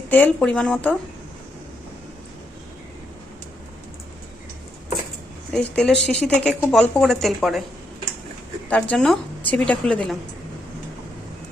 তেল পরিমাণ মতো। এই তেলের শিশি থেকে খুব অল্প করে তেল পড়ে, তার জন্য ছিপিটা খুলে দিলাম।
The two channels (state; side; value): normal; both; correlation 0.78